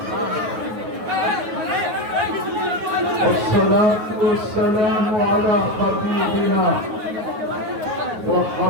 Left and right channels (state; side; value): late; left; 9.4 ms